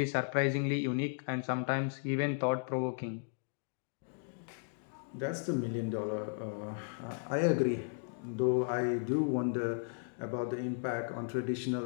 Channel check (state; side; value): silent; right; digital silence